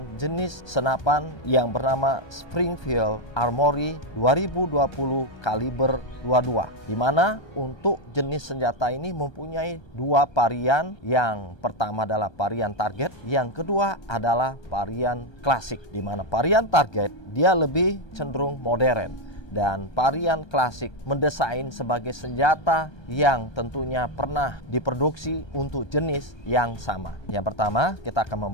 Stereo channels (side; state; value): right; late; 1.3 ms